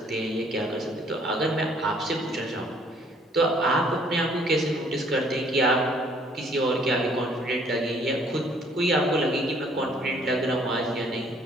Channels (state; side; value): normal; both; correlation 0.61